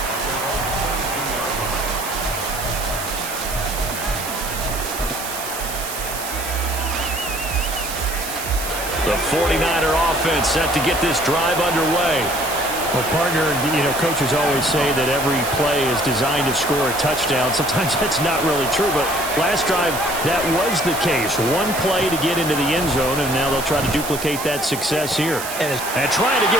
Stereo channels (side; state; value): right; noise; hiss, 7 dB below the sound